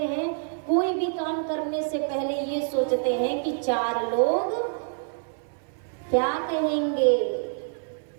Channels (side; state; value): left; silent; 57 dB below the other